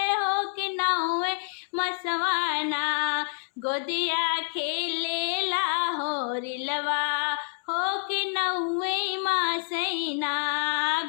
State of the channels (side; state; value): right; silent; 60 dB below the other